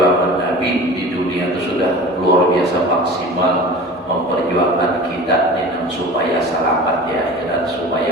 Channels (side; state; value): both; normal; correlation 0.37